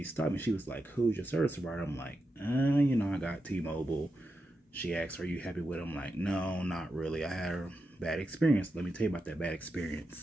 stopped me. She was like, "Who's your service provider?" I'm like, I got T-Mobile." She asked, "Are you happy with it?" I'm like, "No, not really. I had a bad experience." Let me tell you about that bad experience.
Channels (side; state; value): both; normal; correlation 0.88